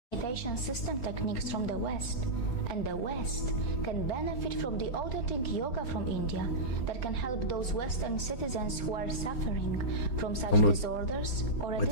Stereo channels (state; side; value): late; right; 4.3 ms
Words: Meditation system techniques from the West, and the West can benefit from the authentic yoga from India that can help those Western citizens who are suffering from such disorders or addictions. What